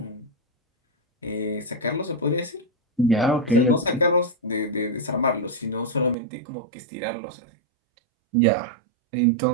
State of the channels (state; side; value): drops out; left; at 6.2 s